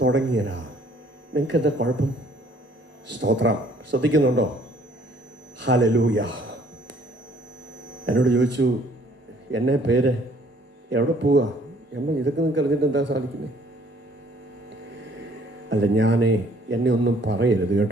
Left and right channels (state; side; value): normal; both; correlation 0.59